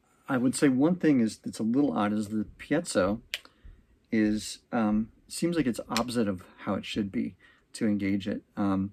would say one thing that's a little odd is the piezo is seems like it's opposite of how it should be to engage it.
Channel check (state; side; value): identical; both; correlation 1.00